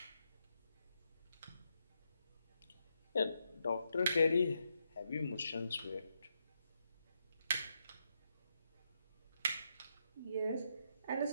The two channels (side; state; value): both; inverted; correlation -0.82